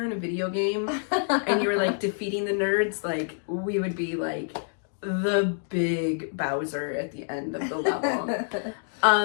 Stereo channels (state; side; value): silent; right; digital silence